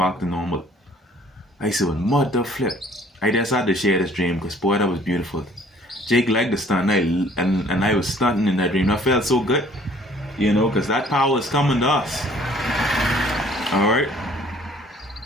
to normal. I said, well, mother flip. I just had to share this dream because, boy, that was beautiful. Jake liked the stunt, and I was stunting in that dream. I felt so good, you know, because that power is coming to us. All right?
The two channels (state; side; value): normal; both; correlation 0.56